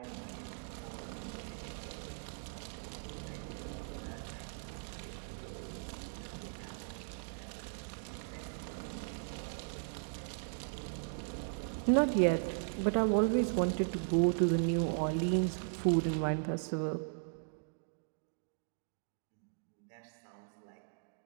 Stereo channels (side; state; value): left; silent; digital silence